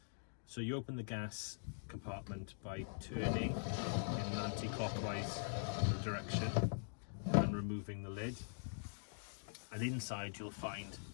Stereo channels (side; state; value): right; silent; digital silence